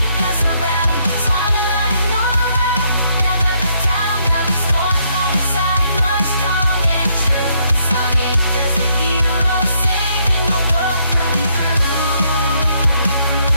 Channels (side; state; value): both; inverted; correlation -0.72